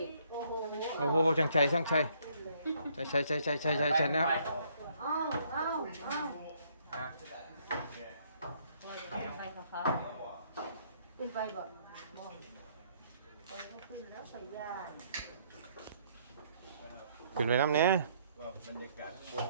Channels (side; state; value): both; inverted; correlation -0.67